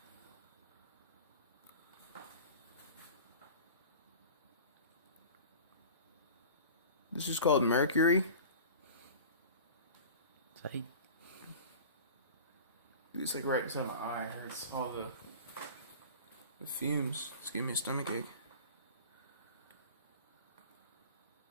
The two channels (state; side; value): inverted; both; correlation -0.38